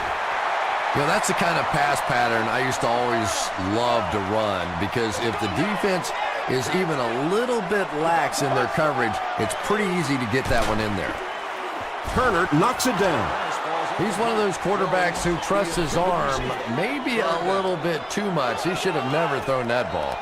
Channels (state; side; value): identical; both; correlation 1.00